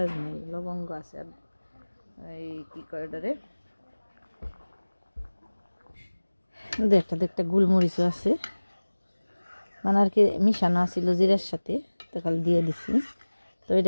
নেই, লবঙ্গ আছে, আর এই কী কয় ওটারে দু একটা গোলমরিচও আছে, মানে আর কি মিশানো আছিল জিরার সাথে, তো খালি দিয়ে দিছি। তো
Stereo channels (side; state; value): both; inverted; correlation -1.00